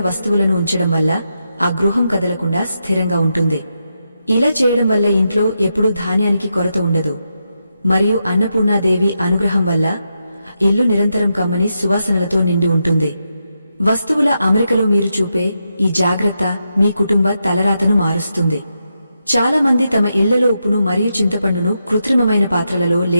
వస్తువులను ఉంచడం వల్ల ఆ గృహం కదలకుండా స్థిరంగా ఉంటుంది. ఇలా చేయడం వల్ల ఇంట్లో ఎప్పుడూ ధాన్యానికి కొరత ఉండదు మరియు అన్నపూర్ణాదేవి అనుగ్రహం వల్ల ఇల్లు నిరంతరం కమ్మని సువాసనలతో నిండి ఉంటుంది. వస్తువుల అమరికలో మీరు చూపే ఈ జాగ్రత్త మీ కుటుంబ తలరాతను మారుస్తుంది. చాలా మంది తమ ఇళ్లలో ఉప్పును మరియు చింతపండును కృత్రిమమైన పాత్రలలో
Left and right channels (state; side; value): inverted; both; correlation -0.85